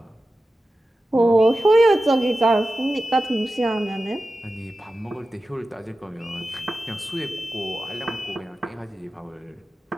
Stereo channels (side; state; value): both; normal; correlation 0.94